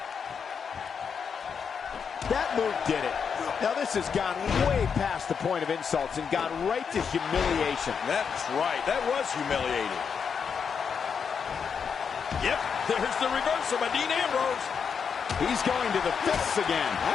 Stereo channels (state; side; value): quieter; right; 6.5 dB